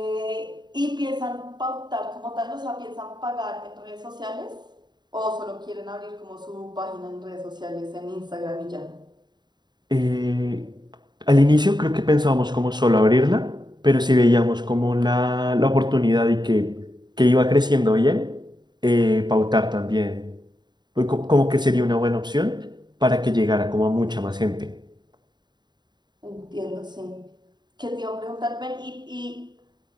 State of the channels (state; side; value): late; left; 0.21 ms